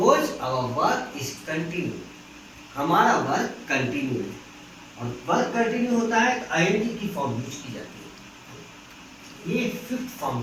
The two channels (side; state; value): both; identical; correlation 1.00